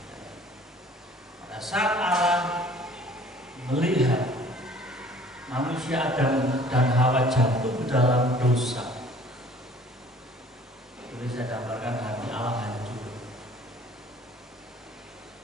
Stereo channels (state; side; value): normal; both; correlation 0.52